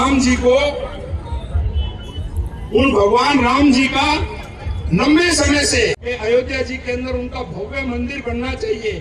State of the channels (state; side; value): identical; both; correlation 1.00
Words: जी को, उन भगवान राम जी का लंबे समय से अयोध्या जी के अंदर उनका भव्य मंदिर बनना